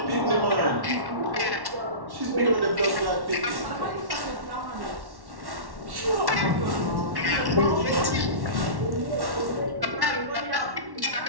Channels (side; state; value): left; late; 1.1 ms